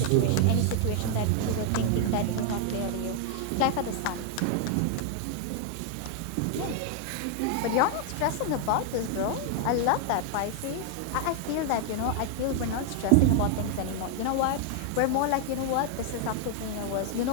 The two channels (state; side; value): different; both; correlation 0.00